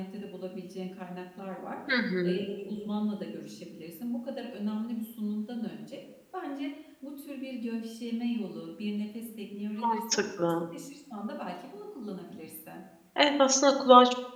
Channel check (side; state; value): both; identical; correlation 1.00